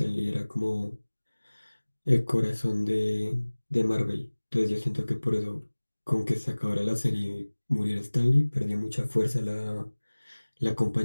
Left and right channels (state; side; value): inverted; both; correlation -1.00